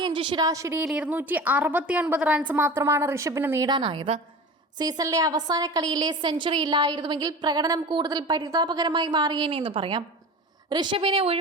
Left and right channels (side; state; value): both; normal; correlation 0.34